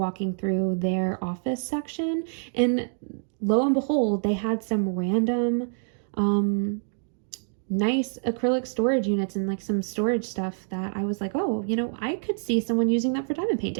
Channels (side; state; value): left; silent; digital silence